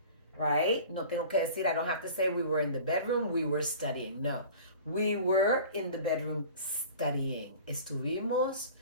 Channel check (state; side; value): inverted; both; correlation -0.42